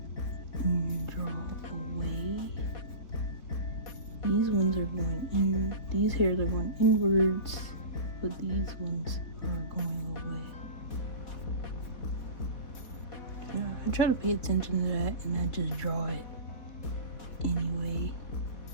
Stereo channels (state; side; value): late; right; 4.4 ms